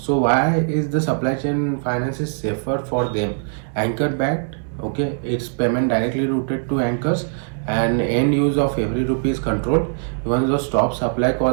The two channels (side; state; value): left; silent; digital silence